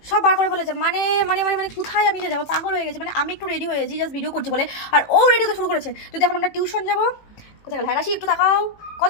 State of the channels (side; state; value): right; late; 18 ms